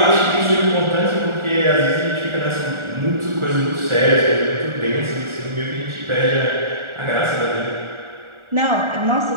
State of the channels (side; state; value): left; late; 1.4 ms